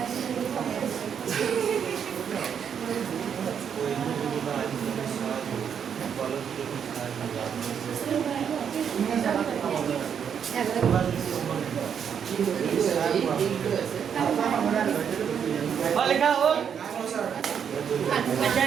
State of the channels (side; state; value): left; quieter; 7.8 dB